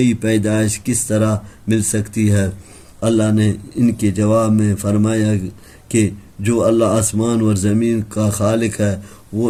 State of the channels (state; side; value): identical; both; correlation 1.00